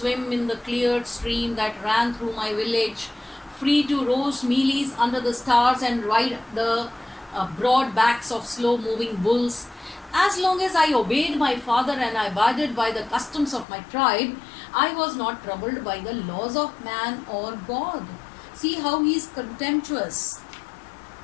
in the cleared stream that ran through my village, free to roast mealies under the stars and ride the broad backs of slow-moving bulls. As long as I obeyed my father and I abided by the customs of my tribe, I was not troubled by the laws of man or God. See how he is contemptuous.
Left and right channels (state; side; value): drops out; right; at 13.7 s